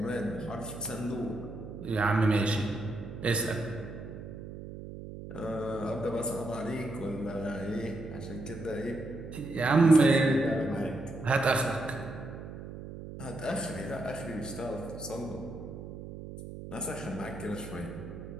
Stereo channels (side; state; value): right; noise; hum, 10 dB below the sound